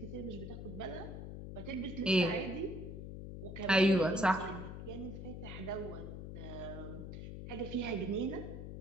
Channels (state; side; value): noise; left; hum, 8 dB below the sound